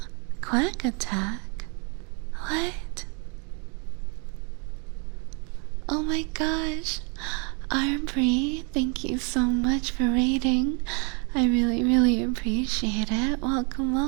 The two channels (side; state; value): left; quieter; 36.2 dB